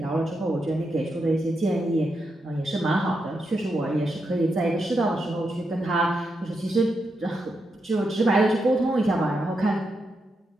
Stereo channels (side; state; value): both; normal; correlation 0.84